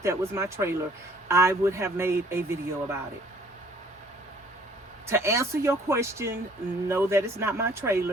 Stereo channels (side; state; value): both; normal; correlation 0.58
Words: that was my trailer, I would have made a video about it. To answer your question, no, that is not my